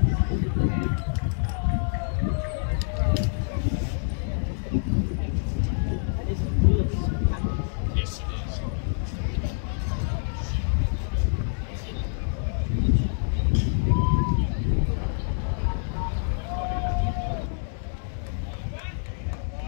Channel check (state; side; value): silent; right; digital silence